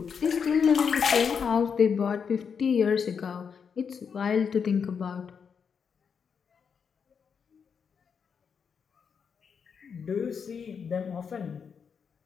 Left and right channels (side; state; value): right; quieter; 6.5 dB